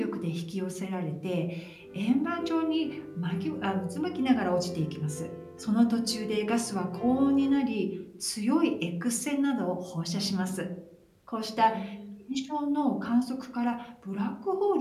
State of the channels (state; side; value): identical; both; correlation 1.00